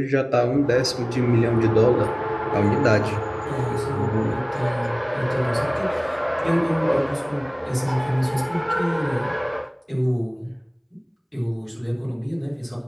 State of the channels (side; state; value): both; identical; correlation 1.00